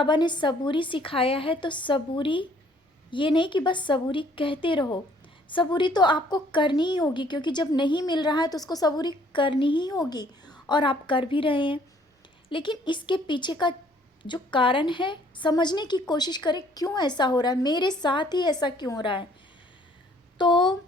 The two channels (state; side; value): normal; both; correlation 0.61